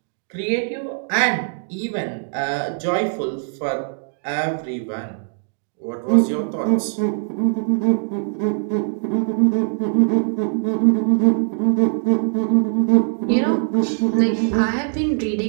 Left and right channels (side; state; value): left; silent; digital silence